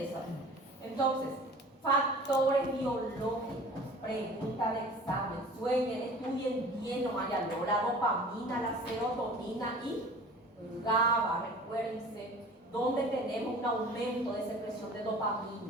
Entonces, factores biológicos, pregunta de examen, sueñen, estudien bien, no haya la dopamina, la serotonina y GABA, recuérdense, donde tenemos un aumento de secreción de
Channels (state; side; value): normal; both; correlation 0.44